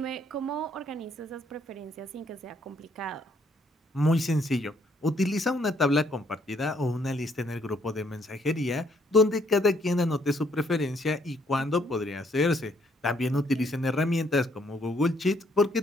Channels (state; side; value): normal; both; correlation 0.68